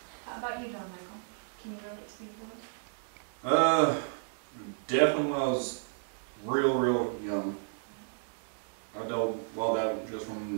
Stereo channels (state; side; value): silent; left; digital silence